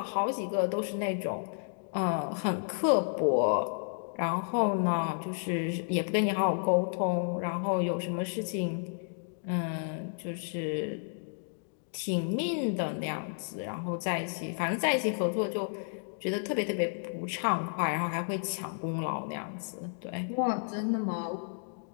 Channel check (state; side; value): silent; right; digital silence